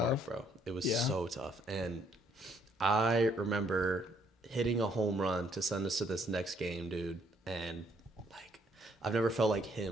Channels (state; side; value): normal; both; correlation 0.68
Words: tough. bro. It was Yeah. so tough, and I remember hitting a home run to send us to this next game, dude. And like, I've never felt like